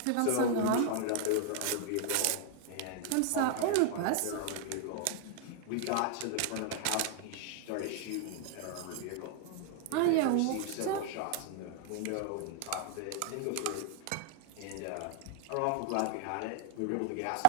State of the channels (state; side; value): different; both; correlation 0.00